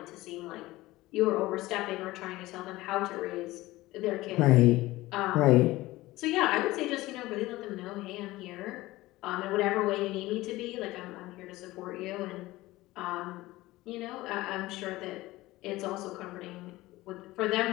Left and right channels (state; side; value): quieter; right; 18.4 dB